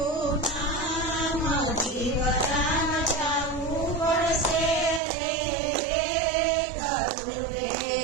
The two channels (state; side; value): drops out; left; at 5.0 s